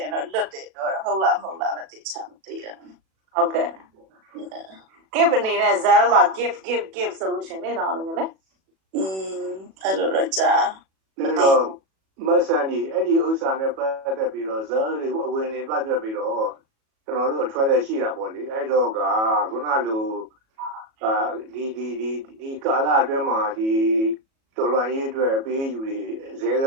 င်တော့လွတ်တယ်တော့ဟုတ်လားမဟုတ်လားလည်းသိချင်မသိတာဟုတ်ကဲ့ give နေတဲ့ cell မှာ give solution နေတော့လို့လေအဲ့လိုတော့ကြားမသိမဆန်ကြီးအဲ့ဒီဥစ္စာနဲ့ပတ်သက်ပြီးတော့ဇာတ်တွေအဝင်နေပတ်သက်ပြီးတော့ကျွန်တော်တို့အထွက်လက်ရှိတာပေါ့လေအဲ့တော့ကခုနလိုဒီကာလအတွင်းမှာဒီတော်လှန်ရေးအတွက်အပေးယူတွေဇဲက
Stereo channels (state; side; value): late; left; 37 ms